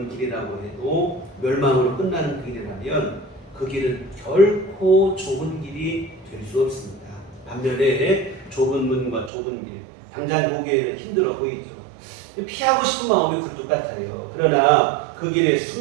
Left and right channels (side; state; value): left; drops out; at 9.3 s